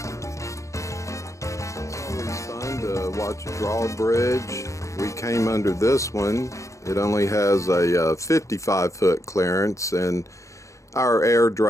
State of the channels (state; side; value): late; right; 0.15 ms